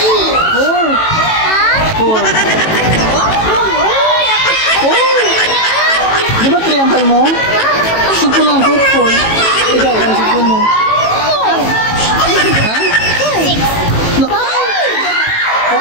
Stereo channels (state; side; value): late; right; 18 ms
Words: Four. Di ba triangle mo? Sipon lang ako, 4. Ikaw, ang sipon mo? Ha? 6.